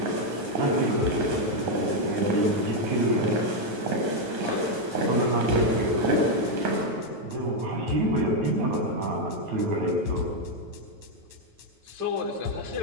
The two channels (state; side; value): late; left; 9.2 ms